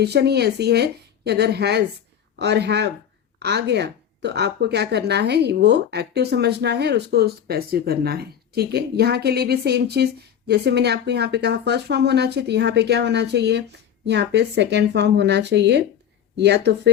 ही ऐसी है कि अगर हैज़ और हैव आ गया तो आपको क्या करना है, वो एक्टिव समझना है और उसको पैसिव करना है। ठीक है, यहाँ के लिए भी सेम चीज़, जैसे मैंने आपको यहाँ पे कहा फर्स्ट फॉर्म होना चाहिए, तो यहाँ पे क्या होना चाहिए, यहाँ पे सेकेंड फॉर्म होना चाहिए, या तो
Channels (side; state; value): right; quieter; 9.1 dB